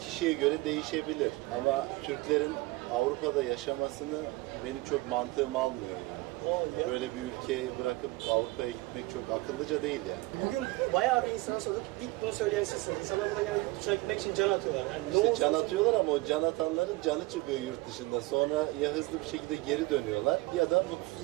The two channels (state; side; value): quieter; left; 21.5 dB